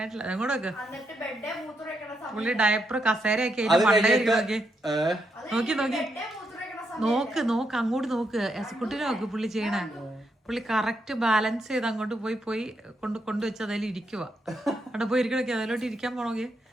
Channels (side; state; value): both; normal; correlation 0.80